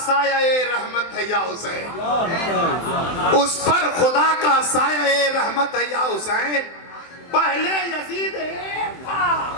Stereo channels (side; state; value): right; late; 23 ms